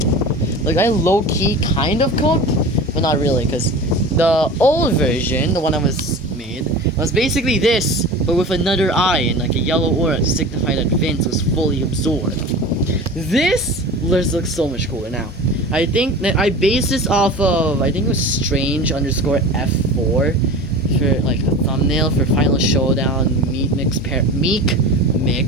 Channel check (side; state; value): both; normal; correlation 0.34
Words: like, I low-key kind of cooked, but not really, because the old version, the one that was made, was basically this, but with another eye and like a yellow aura to signify that Vince was fully absorbed. This looks so much cooler now. I think that I based this off of, I think it was Strange _ F4 for like the thumbnail for Final Showdown Meek